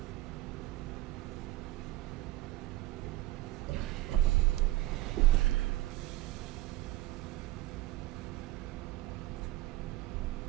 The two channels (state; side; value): quieter; left; 17.1 dB